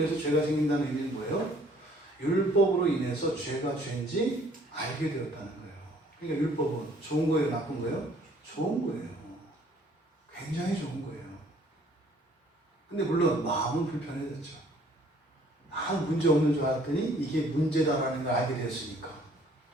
죄가 생긴다는 의미는 뭐예요? 율법으로 인해서 죄가 죄인지 알게 되었다는 거예요. 그러니까 율법은 좋은 거예요? 나쁜 거예요? 좋은 거예요. 굉장히 좋은 거예요. 근데 물론 마음은 불편해졌죠. 문제 없는 줄 알았더니 이게 문제다라는 걸 알게 됐으니까.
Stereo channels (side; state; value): both; normal; correlation 0.59